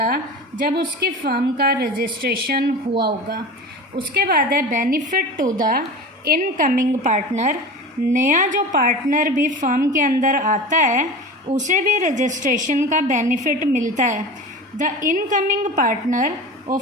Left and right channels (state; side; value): normal; both; correlation 0.33